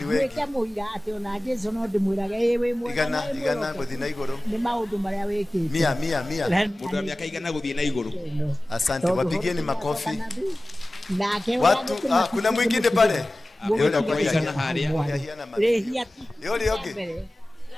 wewe. Weka muira ati ona Jesu no ndimwiraga ewe mwe. Igana guthi na iguru. Ni maundu maria wekite. 100. Mundu wa miaka 100 guthie na iguru. Asante, wapigieni makofi. Nake Watu kuna mwingine pale. Yule kwa igana haria. Yule yoge.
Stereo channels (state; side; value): normal; both; correlation 0.97